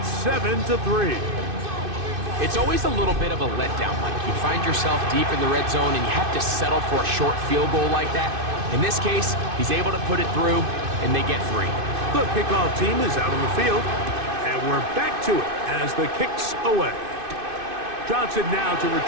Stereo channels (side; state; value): left; late; 2.6 ms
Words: 7-3. It's always a little bit of a letdown, Mike. You find yourself deep in the red zone and you have to settle for a short field goal like that. In this case, he's able to put it through and they get 3. The kickoff team is out on the field. And we're back to it as the kick's away. Johnson now to